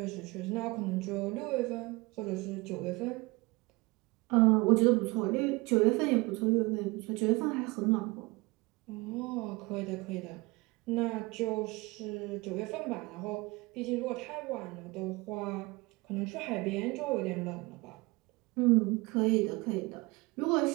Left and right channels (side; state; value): left; quieter; 24.2 dB